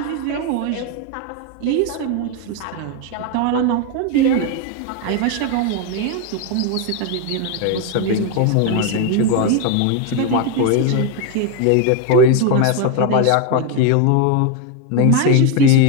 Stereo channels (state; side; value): different; both; correlation 0.02